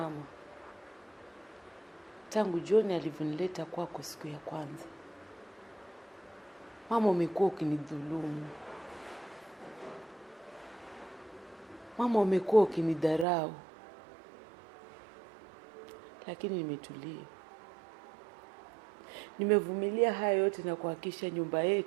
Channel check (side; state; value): left; drops out; at 13.2 s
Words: tangu John alivyonileta kwako siku ya kwanza, mama, umekuwa ukinidhulumu. Mama, umekuwa ukinidharau. Lakini nimetulia. Nimevumilia haya yote na kuhakikisha nyumba